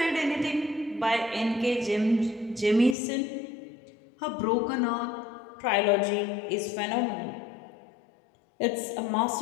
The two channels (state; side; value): drops out; right; at 3.0 s